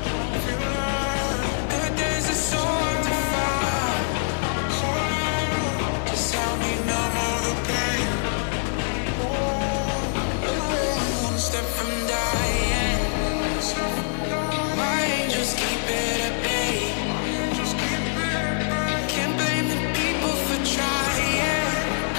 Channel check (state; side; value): silent; right; digital silence